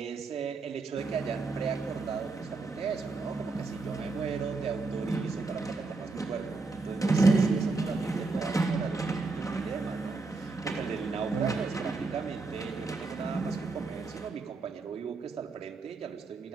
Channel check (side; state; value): left; quieter; 3.8 dB